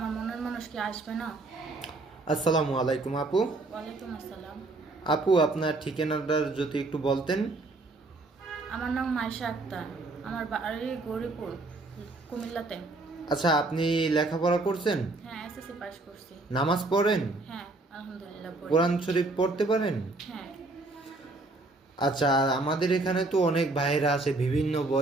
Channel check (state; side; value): quieter; left; 3.1 dB